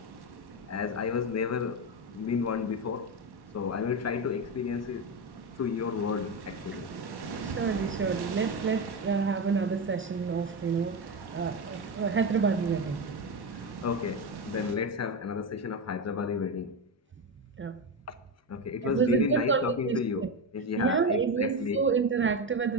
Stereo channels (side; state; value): both; normal; correlation 0.14